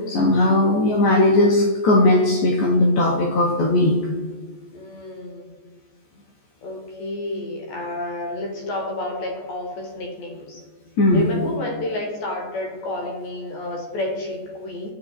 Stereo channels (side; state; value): right; late; 14 ms